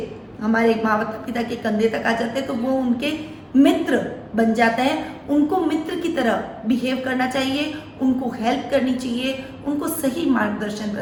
हमारे माता पिता के कंधे तक आ जाते हैं तो वो उनके मित्र बन जाते हैं। उनको मित्र की तरह बिहेव करना चाहिए, उनको हेल्प करनी चाहिए, उनको सही मार्गदर्शन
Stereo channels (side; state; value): both; identical; correlation 1.00